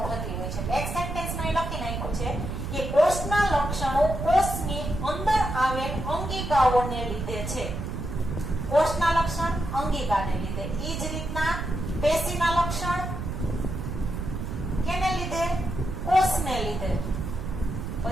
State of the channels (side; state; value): right; noise; rumble, 5 dB below the sound